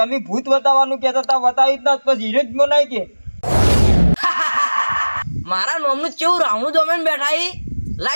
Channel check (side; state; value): both; inverted; correlation -1.00